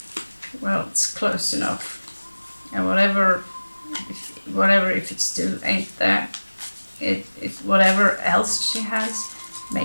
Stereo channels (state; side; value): inverted; both; correlation -1.00